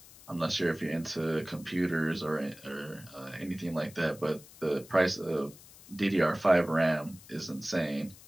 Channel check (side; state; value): left; noise; hiss, 21 dB below the sound